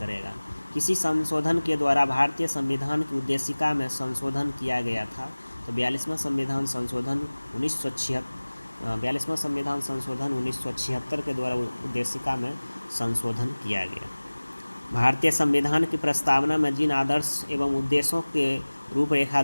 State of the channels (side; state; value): both; inverted; correlation -1.00